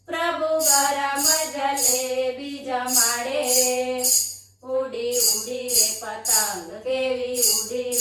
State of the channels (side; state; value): both; identical; correlation 1.00